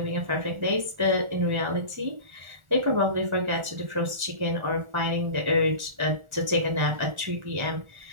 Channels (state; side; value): late; left; 1.4 ms